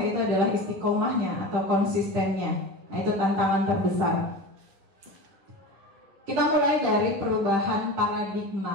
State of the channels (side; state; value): left; late; 10 ms